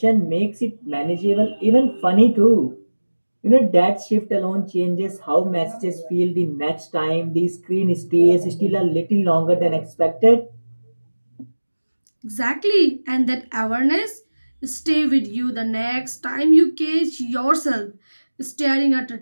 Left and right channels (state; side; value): inverted; both; correlation -1.00